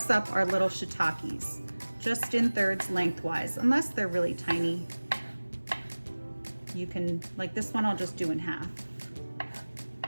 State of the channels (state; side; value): inverted; both; correlation -1.00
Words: up our little shiitakes, just in thirds lengthwise, unless they're really tiny. You can, like this one, I'll just do in half.